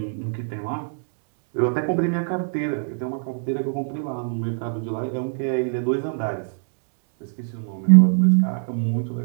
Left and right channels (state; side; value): silent; left; 63 dB below the other